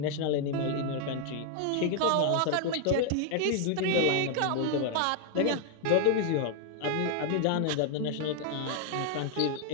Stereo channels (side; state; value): both; different; correlation 0.00